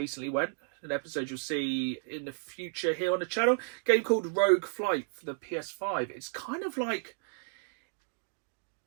went. An episode you'll see in the future here on the channel. A game called Rogue Flight for the PS5. It's kind of like...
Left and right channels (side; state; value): left; silent; digital silence